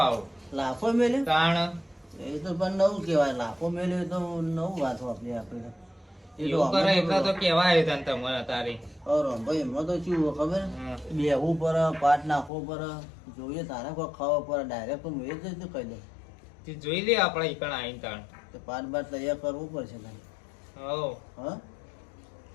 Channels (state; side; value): drops out; right; at 12.5 s